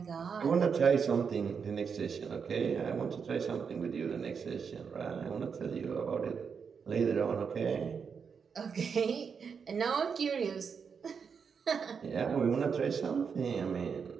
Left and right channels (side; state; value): left; quieter; 6.2 dB